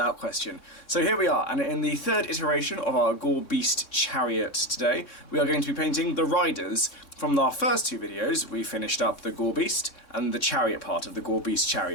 question. So here we are, and in the third iteration of our Gore Beast Chariot today, we are going to be painting the riders. From our first two videos, we finished up the Gore Beast and the chariot part of the Gore Beast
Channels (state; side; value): late; right; 3.6 ms